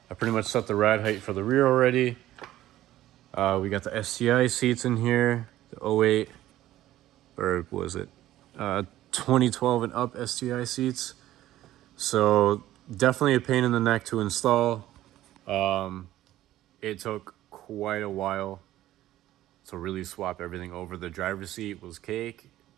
pretty much set the ride height for the rear already. We got the STI seats in here, the 08, or was it 2012 and up STI seats. So definitely a pain in the neck to install. It took quite a while to really swap everything over. The driver's seat was cake,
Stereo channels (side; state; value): left; quieter; 14.2 dB